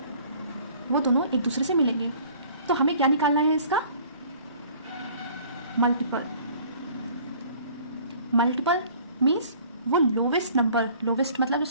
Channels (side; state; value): both; inverted; correlation -0.53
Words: वो दोनों एक दूसरे से मिलेंगे। तो हमें क्या निकालना है इसका? मल्टीपल। मल्टीपल मीन्स वो लोवेस्ट नंबर, लोवेस्ट मतलब जो